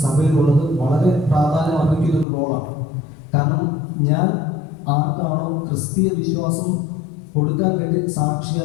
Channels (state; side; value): drops out; right; at 2.2 s